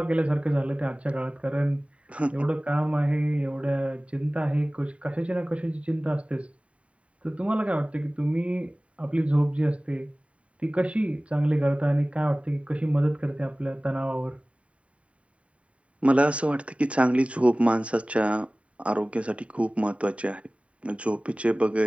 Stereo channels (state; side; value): late; left; 0.064 ms